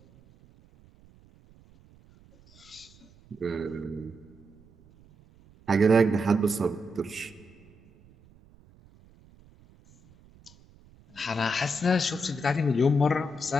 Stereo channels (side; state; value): right; noise; rumble, 27 dB below the sound